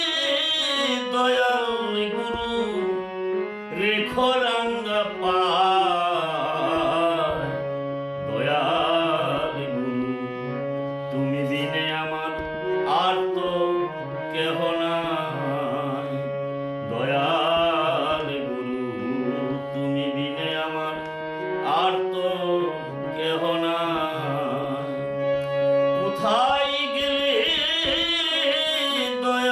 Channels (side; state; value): both; identical; correlation 1.00